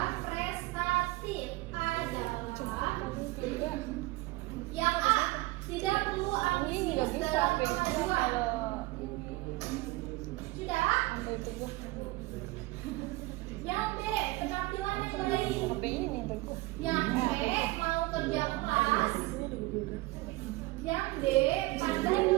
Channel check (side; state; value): left; quieter; 20.7 dB